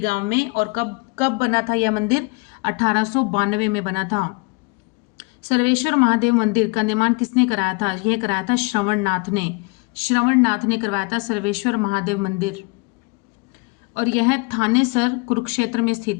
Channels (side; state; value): right; quieter; 29.6 dB